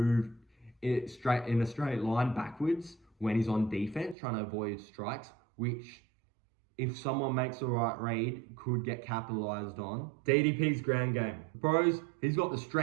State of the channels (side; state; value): left; drops out; at 4.2 s